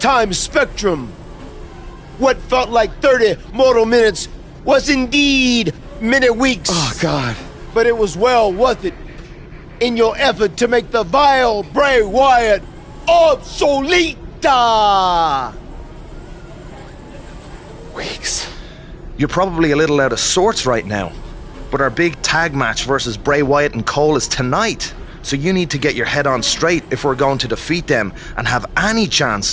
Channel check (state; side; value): identical; both; correlation 1.00